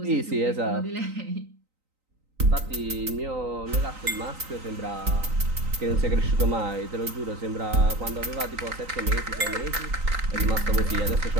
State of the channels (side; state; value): left; late; 3.9 ms